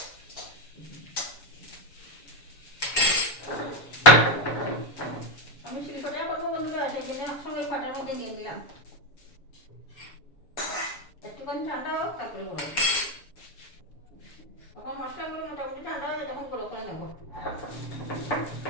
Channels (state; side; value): late; right; 7.0 ms